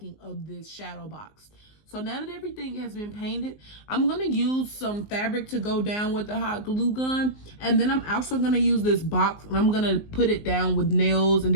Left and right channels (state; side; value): late; right; 19 ms